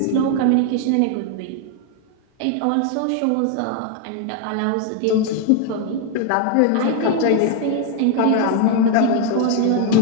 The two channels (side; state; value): both; different; correlation 0.00